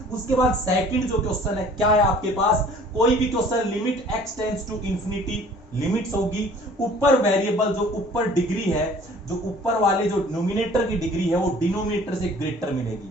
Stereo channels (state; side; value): normal; both; correlation 0.51